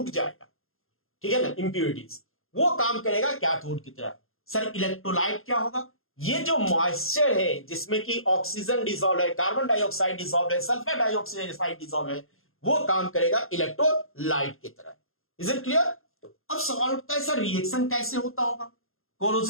जाएगा, ठीक है ना, इंप्योरिटीज। वो काम करेगा कैथोड की तरह। सर इलेक्ट्रोलाइट क्या होगा, ये जो मॉइस्चर है जिसमें कि ऑक्सीजन डिसॉल्व है, कार्बन डाइऑक्साइड डिसॉल्व है, सल्फर डाइऑक्साइड डिसॉल्व है, वो काम करेगा इलेक्ट्रोलाइट की तरह। Is it clear? अब सवाल उठता है सर रिएक्शन कैसे होता होगा,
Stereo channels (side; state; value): right; late; 0.61 ms